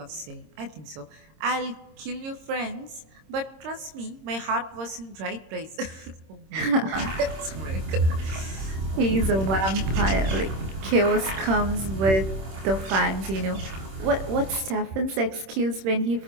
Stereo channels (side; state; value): left; late; 26 ms